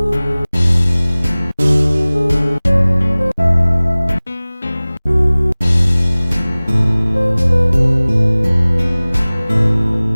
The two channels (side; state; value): both; inverted; correlation -0.99